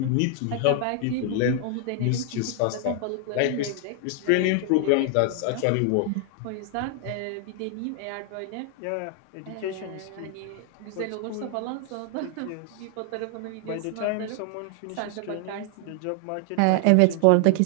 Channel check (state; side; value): different; both; correlation 0.00